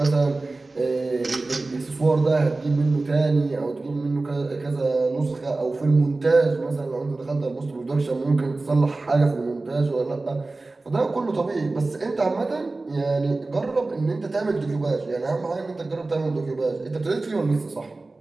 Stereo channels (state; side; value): quieter; left; 3.3 dB